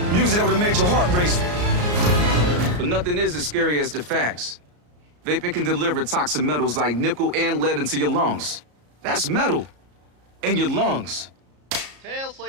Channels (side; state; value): left; late; 34 ms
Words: that would have made your heart race. But nothing is as scary as the facts. Vaping can deliver toxic metals like nickel and lead into your lungs. That's metal in your lungs. Tail